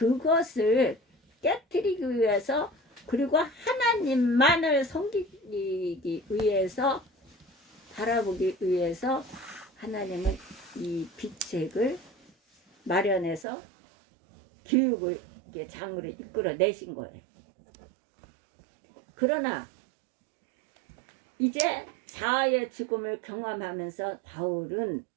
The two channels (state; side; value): drops out; left; at 13.5 s